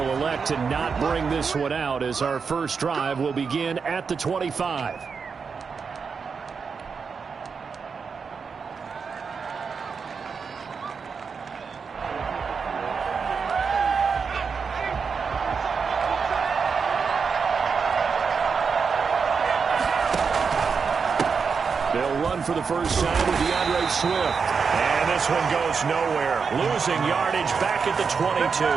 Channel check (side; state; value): left; quieter; 5.6 dB